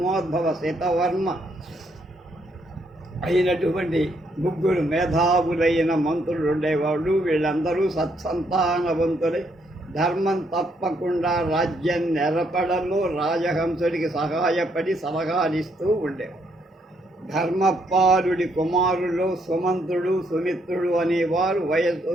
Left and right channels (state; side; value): normal; both; correlation 0.73